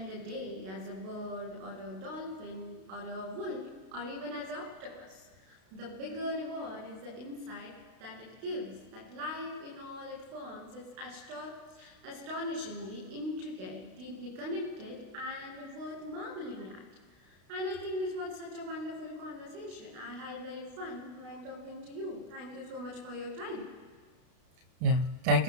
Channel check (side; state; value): left; late; 32 ms